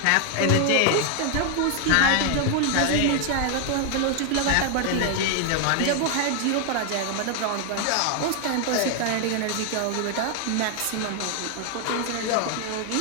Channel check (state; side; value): different; both; correlation 0.00